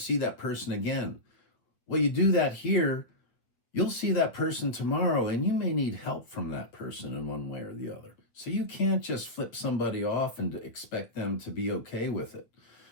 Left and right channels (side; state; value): right; late; 8.4 ms